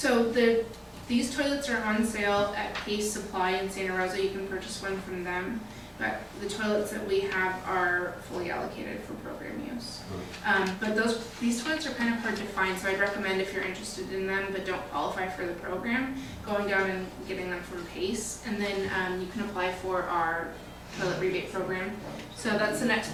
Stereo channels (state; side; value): identical; both; correlation 1.00